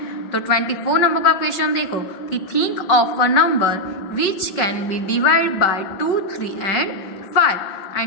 तो 24 नंबर का क्वेश्चन देखो कि think of a number which can be divide by 2, 3 and 5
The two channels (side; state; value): right; late; 5.2 ms